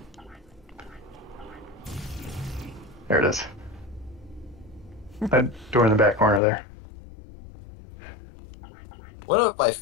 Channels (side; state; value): right; drops out; at 6.4 s